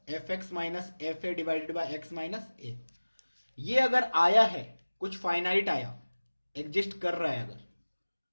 f x minus f a divided by x minus a. ये अगर आया है, कुछ फाइनाइट आया, एग्जिस्ट कर रहा है, अगर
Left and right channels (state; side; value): inverted; both; correlation -1.00